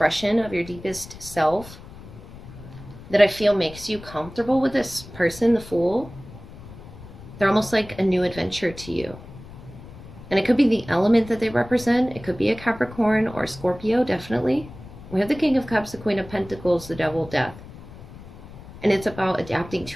of your deepest self that I feel makes you comfortable with this person, the Fool. They're almost like a new adventure to you. And it could be the element that they represent. It could be a Capricorn or a Scorpio, definitely. We have the King of Cups, the Queen of Pentacles, the Devil, Death. And it's about adapting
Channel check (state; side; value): noise; left; rumble, 16 dB below the sound